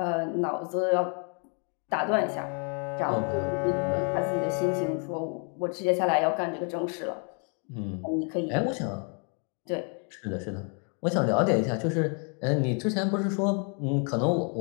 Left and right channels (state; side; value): quieter; right; 39.5 dB